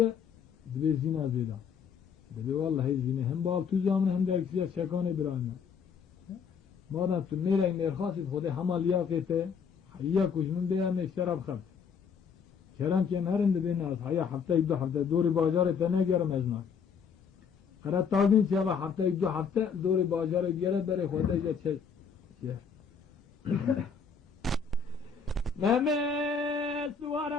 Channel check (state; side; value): quieter; right; 6.3 dB